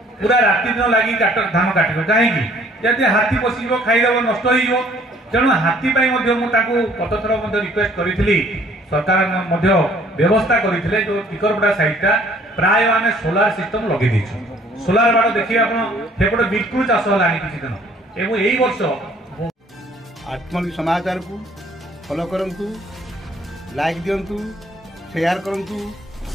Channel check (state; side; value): normal; both; correlation 0.59